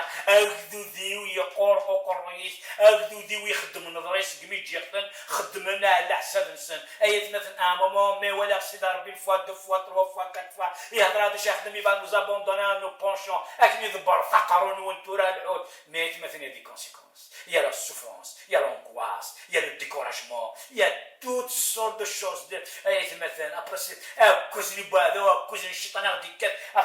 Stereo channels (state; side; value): identical; both; correlation 1.00